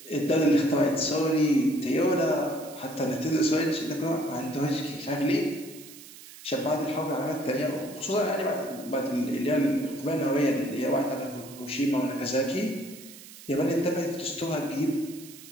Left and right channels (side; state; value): right; noise; hiss, 17 dB below the sound